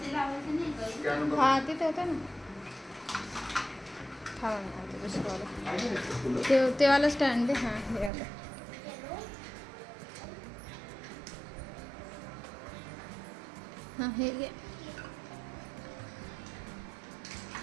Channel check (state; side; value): drops out; left; at 8.1 s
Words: लावायची नाही का? हा तिथे होतं ना. हा दुसरं ते वाला स्टँड दे. हां हे आलं. हां हे घे.